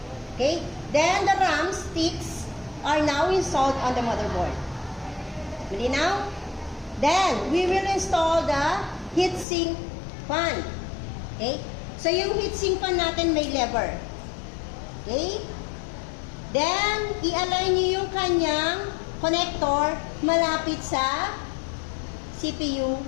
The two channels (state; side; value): drops out; right; at 9.5 s